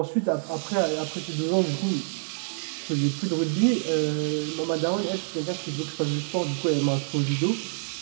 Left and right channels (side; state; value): left; silent; digital silence